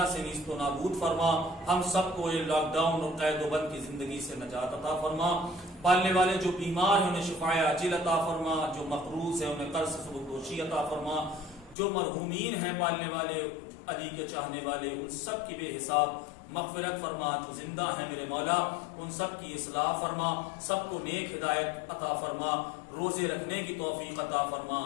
سے نیست و نابود فرما. ہم سب کو یہ لاک ڈاؤن اور قید و بند کی زندگی سے نجات عطا فرما. پالنے والے جو بیمار ہیں انہیں شفاء عاجل عطا فرما. جو مقروض ہیں انہیں قرض سے سبکدوشی عطا فرما. جو مرحومین ہیں پالنے والے علی کے چاہنے والے ان سب کی بے حساب مغفرت فرما. جو زندہ ہیں میرے مولا ان سب کی اصلاح فرما. سب کو نیک ہدایت عطا فرما. روزے رکھنے کی توفیق عطا فرما.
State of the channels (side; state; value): right; drops out; at 11.8 s